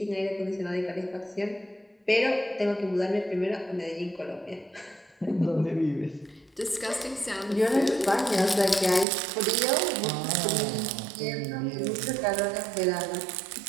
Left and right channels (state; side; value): drops out; left; at 9.1 s